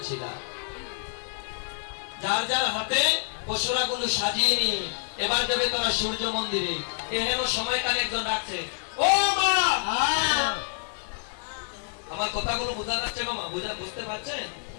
যার যার হাতে পশুরাগুলো সাজিয়ে নিয়ে এবার যাবে তারা সূর্য মন্দিরে। এহেন সময়কালে একজন ডাকছে, ও মা! আমার কথাগুলো বোঝা যাচ্ছে মামা? বুঝতে পারছেন?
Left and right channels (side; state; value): right; silent; digital silence